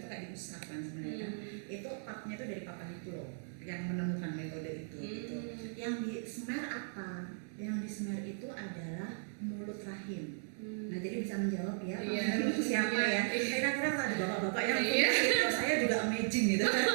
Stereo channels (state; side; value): silent; left; digital silence